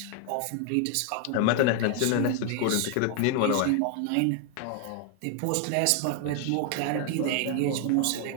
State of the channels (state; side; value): different; both; correlation 0.00